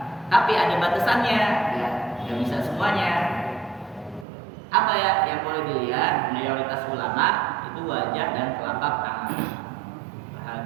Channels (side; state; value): left; drops out; at 4.2 s